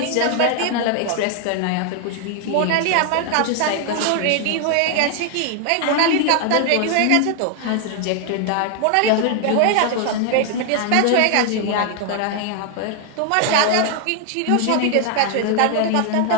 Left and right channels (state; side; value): different; both; correlation 0.00